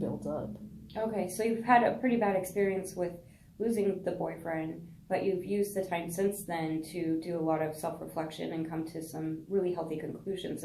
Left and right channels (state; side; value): identical; both; correlation 1.00